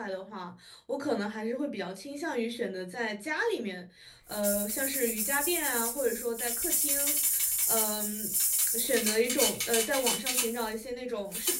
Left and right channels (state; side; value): identical; both; correlation 1.00